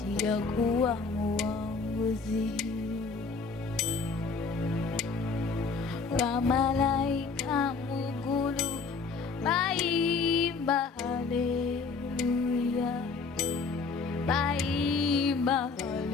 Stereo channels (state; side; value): quieter; right; 4.6 dB